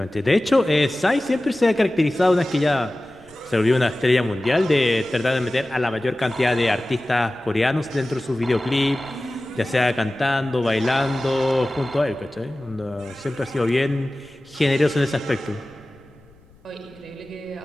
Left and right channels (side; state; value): left; noise; rumble, 29 dB below the sound